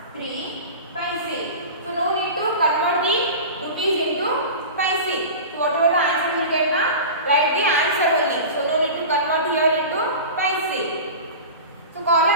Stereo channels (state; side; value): inverted; both; correlation -0.31